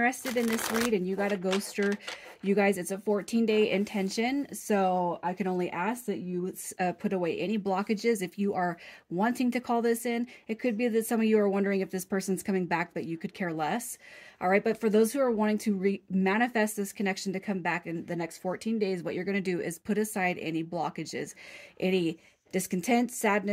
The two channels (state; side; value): identical; both; correlation 1.00